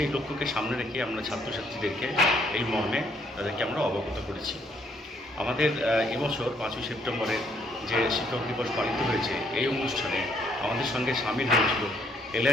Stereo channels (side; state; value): both; normal; correlation 0.68